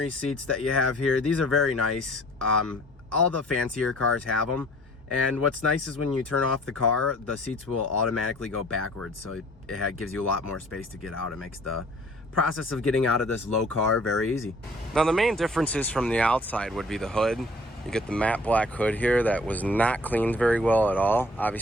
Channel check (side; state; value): both; normal; correlation 0.52